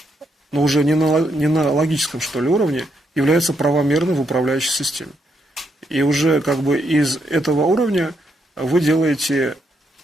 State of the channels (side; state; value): both; normal; correlation 0.78